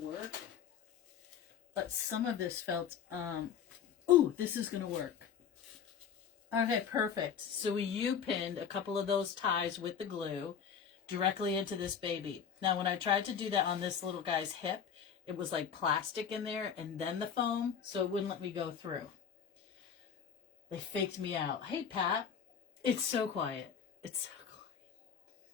But some of this felt, ooh, this is going to work. Okay, perfect. So we U-pinned a couple of those ties with the glue directly into this baby. Now, when I tried to do that on this little guy's hip, it was like plastic in there and then the foam, so it wouldn't let me go through. They faked me out. Hey, Pat. It's so quiet. It's so quiet.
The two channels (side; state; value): right; quieter; 7.6 dB